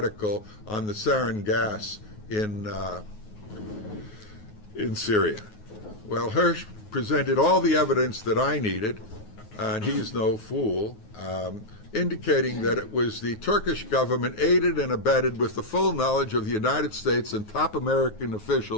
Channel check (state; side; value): late; right; 9.4 ms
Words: on the sarin gas in Syria? Well, Hersh presented all the evidence that I needed, and he's no fool, indicating that it was the Turkish government, aided and abetted with the full knowledge of the United States and top American